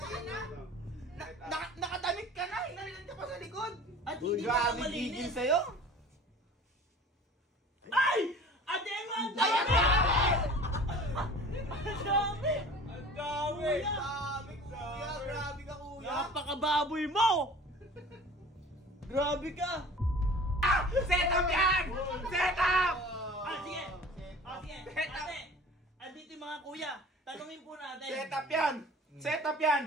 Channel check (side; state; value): both; normal; correlation 0.43